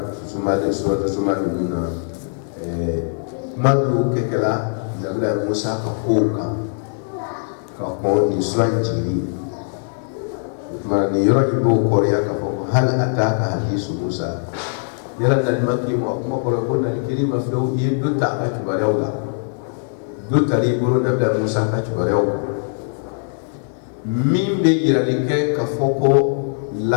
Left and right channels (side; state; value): right; silent; 65 dB below the other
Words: sumali sura sumali nuna kuma do kala nabila Musa ka ko ni sura jini ma ni yoro ibo ko ya ka foko hal ataka hadisu Musa yala na maki mo kuma ko na kilima flo yi do ta ka tubarew la do tari buru na da Musa ka tubarew min be yira ni ke ka foko